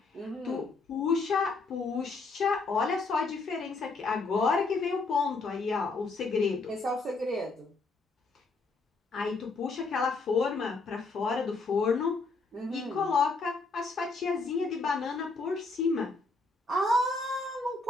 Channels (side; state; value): right; quieter; 3.7 dB